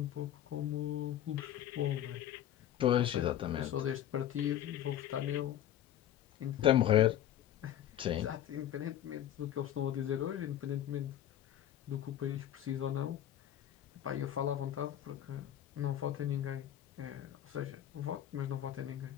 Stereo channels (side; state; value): right; quieter; 11.5 dB